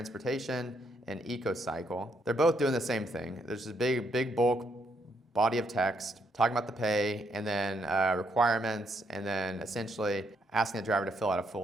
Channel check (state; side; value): normal; both; correlation 0.75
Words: and EcoCycle, they're both doing the same thing. There's this big bulk body of text talking about the pay, and then requirements, and then essentially asking the driver to fill out a